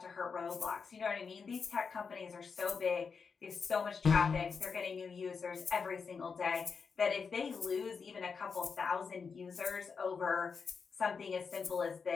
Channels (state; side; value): quieter; right; 5.5 dB